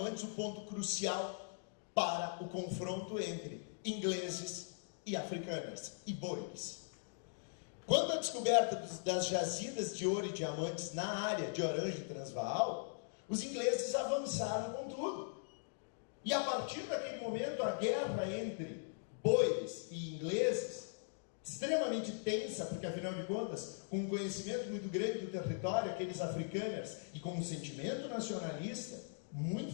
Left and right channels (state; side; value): silent; right; digital silence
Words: o ponto crucial para o confronto entre ingleses e africanos e boeres. Quando a descoberta das jazidas de ouro e diamantes na área de Orange e Transvaal, os ingleses avançaram com tudo. E a partir daquele momento, a guerra entre boeres e ingleses, extremamente tensa, porque afinal de contas, com um conhecimento muito grande do território, aqueles africanos, e com um sentimento nacionalista